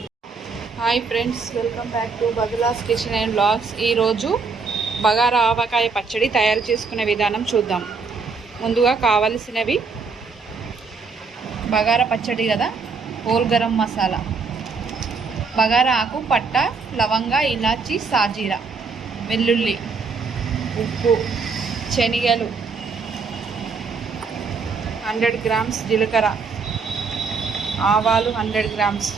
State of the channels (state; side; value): quieter; left; 4.7 dB